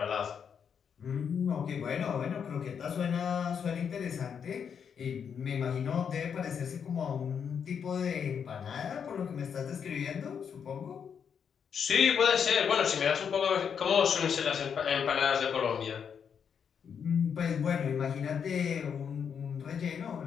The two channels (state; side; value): quieter; right; 7.2 dB